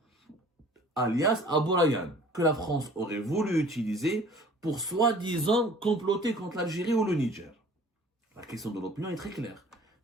alias Aboulaïen, que la France aurait voulu utiliser pour soi-disant comploter contre l'Algérie ou le Niger? La question de l'Opinion est très claire.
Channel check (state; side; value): normal; both; correlation 0.49